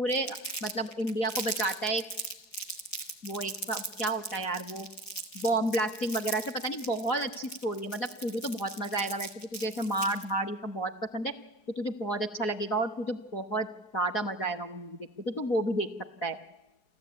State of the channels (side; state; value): right; late; 4.7 ms